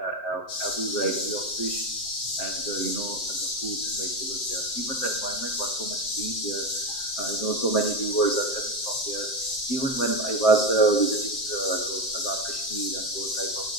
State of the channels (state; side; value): late; right; 7.6 ms